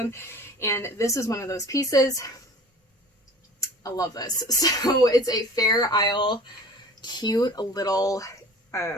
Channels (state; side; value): normal; both; correlation 0.44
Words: And this is one of those pieces. I love this. So it's a Fair Isle cute little